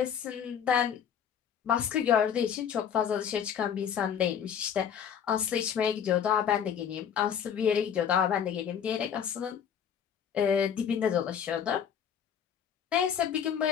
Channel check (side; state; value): right; quieter; 8.3 dB